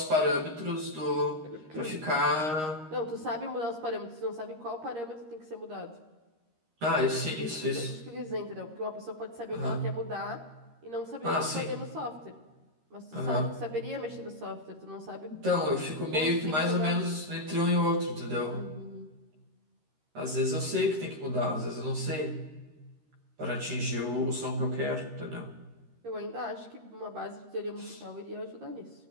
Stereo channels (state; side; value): late; left; 13 ms